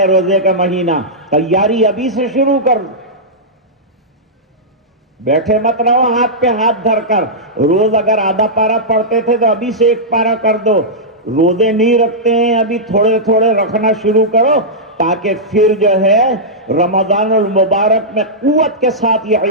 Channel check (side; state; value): both; normal; correlation -0.11